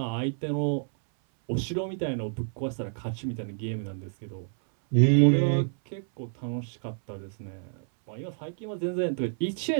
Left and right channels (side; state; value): left; silent; 58 dB below the other